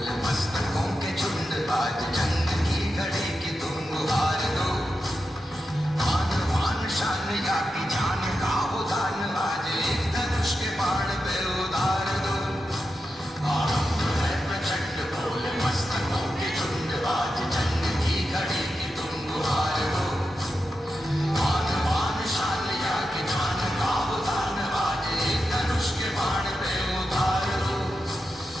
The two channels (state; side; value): normal; both; correlation 0.89